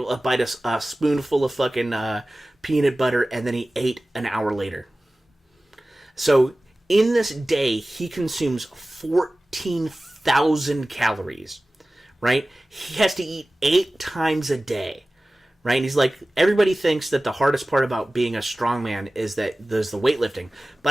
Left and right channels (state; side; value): normal; both; correlation 0.97